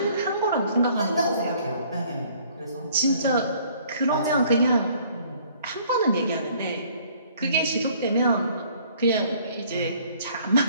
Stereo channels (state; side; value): inverted; both; correlation -0.59